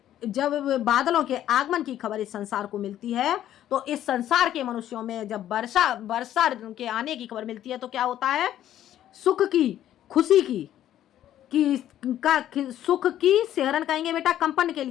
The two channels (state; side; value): quieter; right; 11.9 dB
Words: जब बादलों के आगमन की खबर इस संसार को मिलती है तो इस संसार के मनुष्यों में जब वर्षा के आने की खबर मिलती है तो क्या होता है, सुख की, खुशी की सुख की सहरन कहेंगे बेटा कंपन के